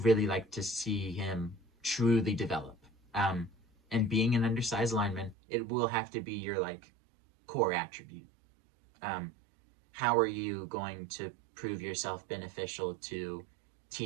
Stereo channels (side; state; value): left; drops out; at 5.4 s